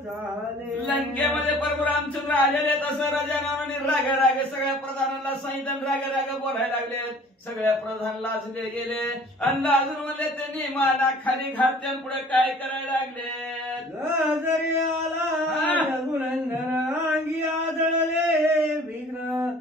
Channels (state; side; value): normal; both; correlation 0.50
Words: लंकेमध्ये प्रभू रामचंद्र आलेले तसं राजा रावणाने रागे रागे सगळ्या प्रधानांना सांगितलं, रागे रागे बोलायला लागले. सगळ्या प्रधान लाजले गेले आणि लाजून म्हणले त्यांनी माना खाली घातल्या पुढे काय करायला लागले. जरी आला रघुनंदन अंगी आदळले विघ्न,